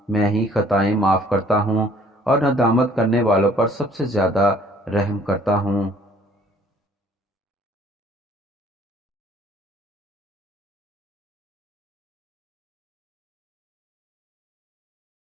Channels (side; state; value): both; normal; correlation 0.57